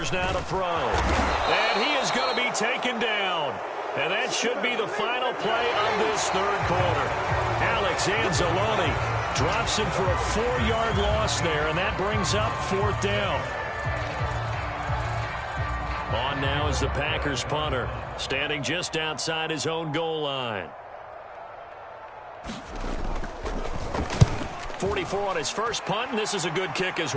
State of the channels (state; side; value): identical; both; correlation 1.00